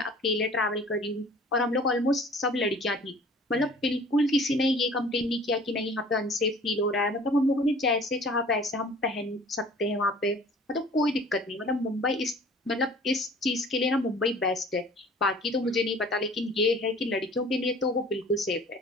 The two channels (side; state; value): both; normal; correlation 0.48